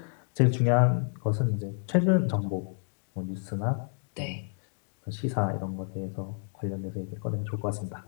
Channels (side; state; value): right; silent; 58 dB below the other